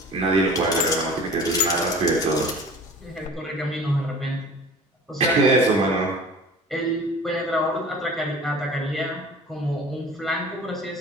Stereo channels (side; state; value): both; normal; correlation 0.42